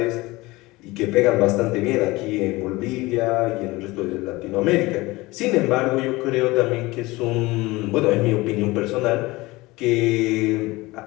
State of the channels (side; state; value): right; quieter; 21.2 dB